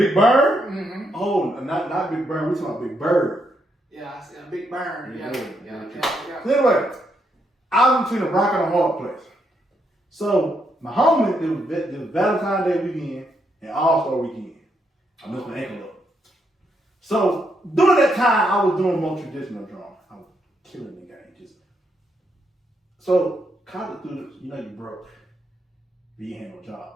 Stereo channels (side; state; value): both; normal; correlation 0.78